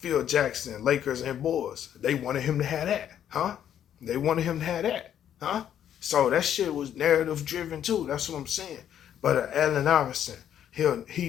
Jackson, Lakers and Bulls, they wanted him to have that, huh? They wanted him to have that, huh? So that shit was narrative driven too. That's what I'm saying. But Allen Iverson, he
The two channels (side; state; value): right; quieter; 10.0 dB